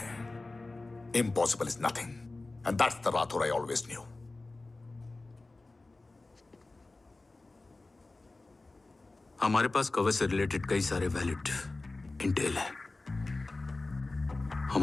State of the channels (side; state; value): right; quieter; 3.2 dB